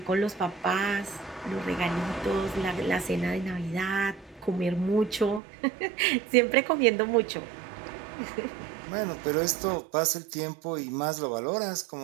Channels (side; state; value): left; drops out; at 5.4 s